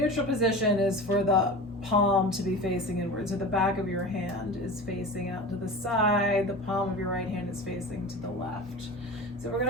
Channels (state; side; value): normal; both; correlation 0.32